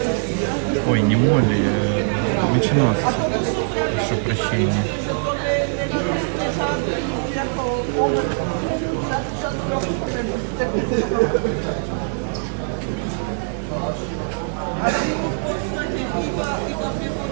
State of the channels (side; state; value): left; silent; digital silence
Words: Ой, не молли, меченосцы. Прошу прощения.